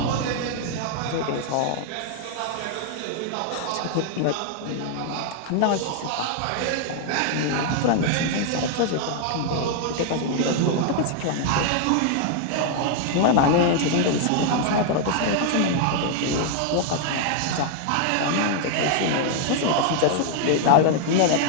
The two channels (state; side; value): different; both; correlation 0.00